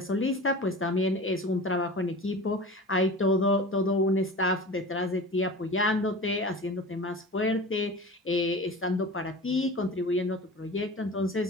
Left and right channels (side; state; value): both; normal; correlation 0.35